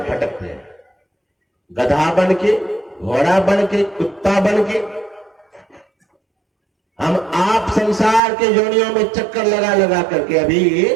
हैं, गधा बन के, घोड़ा बन के, कुत्ता बन के। हम आप संसार के योनियों में चक्कर लगा लगा करके। अभी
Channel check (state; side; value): drops out; left; at 8.2 s